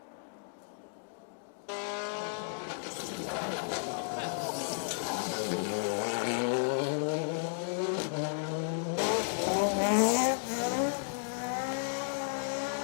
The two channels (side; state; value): right; silent; digital silence